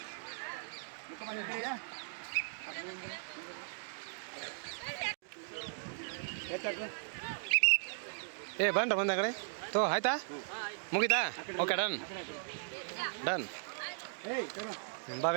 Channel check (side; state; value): left; silent; digital silence